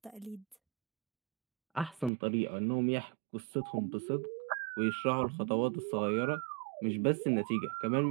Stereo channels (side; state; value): left; drops out; at 2.1 s